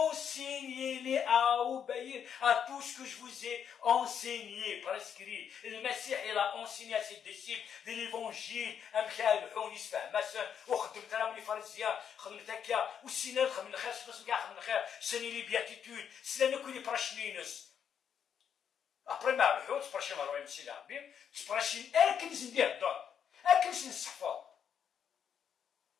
à obéir à tout ce que je vous ai enseigné, prescrit. Le Messie, il a enseigné à ses disciples de l'évangile. les béatitudes. Cela ne connaît pas Après ما ربحوا تبرشي ما روي مسي لعبين تبرشي اكنس ندير الدور اكنس نصحفو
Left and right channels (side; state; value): right; quieter; 8.1 dB